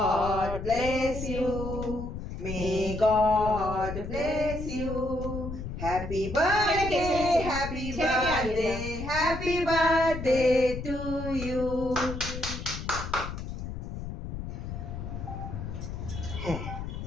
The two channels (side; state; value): left; noise; rumble, 7 dB below the sound